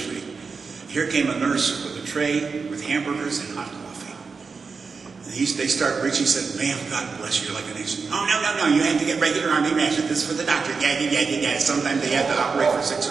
Here came a nurse with a tray with hamburgers and hot coffee. And they started reaching, said, ma'am, God bless you, like an Asian. Oh, no, you have to get regular Army ration. This is for the doctor. Yeah. Sometimes they had to operate for 6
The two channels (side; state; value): left; quieter; 4.9 dB